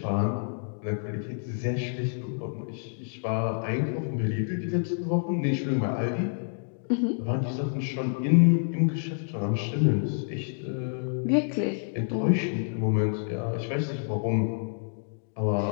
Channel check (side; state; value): right; silent; digital silence